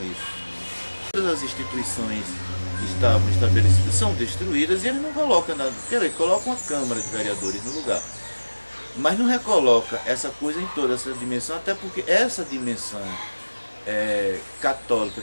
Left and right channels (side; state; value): both; inverted; correlation -1.00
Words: isso. Todas as instituições que estavam estabelecidas são destruídas e eles não colocam nada. Quer dizer, colocam uma Câmara de Vereadores no lugar. Mas não recoloca essa coisa em toda essa dimensão, até porque essa dimensão católica,